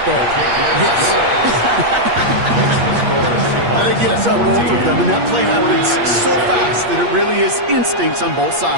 thing? Yes. I think yes on both of them, and that play happens so fast that it really is instincts on both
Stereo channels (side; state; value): left; late; 8.5 ms